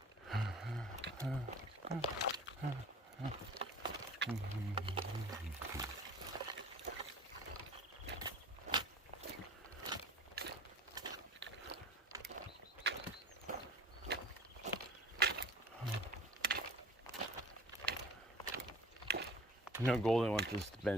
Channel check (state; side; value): normal; both; correlation 0.43